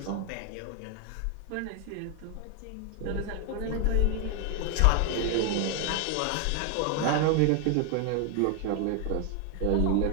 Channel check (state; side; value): different; both; correlation 0.00